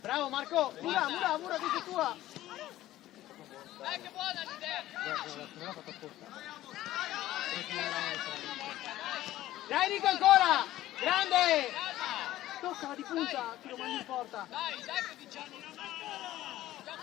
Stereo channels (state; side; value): quieter; right; 14.8 dB